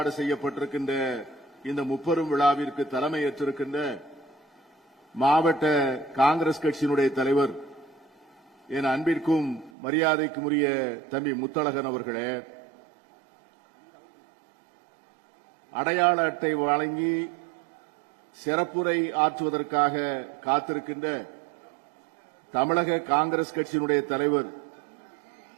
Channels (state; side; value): drops out; left; at 9.7 s